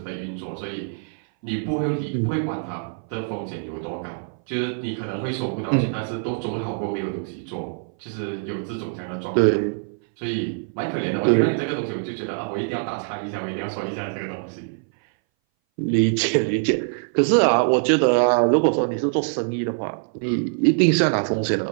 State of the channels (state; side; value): silent; left; 60 dB below the other